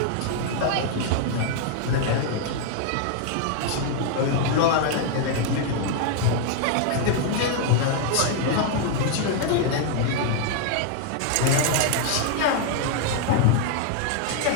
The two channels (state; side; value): different; both; correlation 0.00